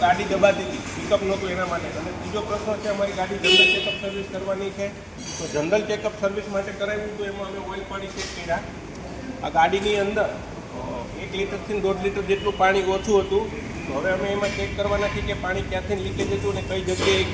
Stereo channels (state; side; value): identical; both; correlation 1.00